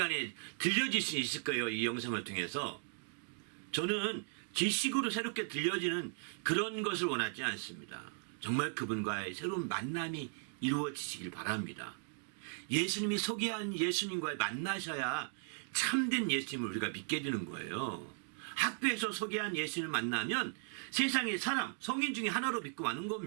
들려질 수 있을 거예요. 이 영상을 통해서. 저는 지식으로 새롭게 들려지는 그런 것을 원하지 않습니다. 정말 그분과의 새로운 만남이 이루어지시길 바랍니다. 예수님이 소개한 예수님과의 만나셔야 참된 예수님을 우리가 믿게 되는 거예요. 학교에서 소개한 예수님을 만나면 세상의 성인 중에 하나로 믿고 마는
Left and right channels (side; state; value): left; silent; 53 dB below the other